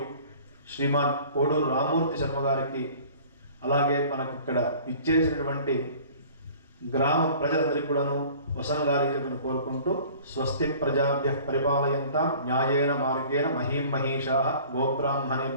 శ్రీమాన్ కోడూరు రామ్మూర్తి శర్మ గారికి అలాగే మనకి ఇక్కడ ఇచ్చేసినటువంటి గ్రామ ప్రజలందరికీ కూడాను వసంగాలి చెప్పని కోరుకుంటూ స్వస్తి ప్రజాభ్యః పరిపాలయంతాం న్యాయేన మార్గేణ మహీం మహీషాః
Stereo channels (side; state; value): both; inverted; correlation -0.48